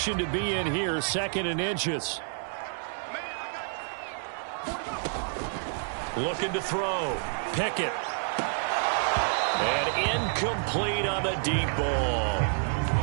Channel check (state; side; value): silent; left; digital silence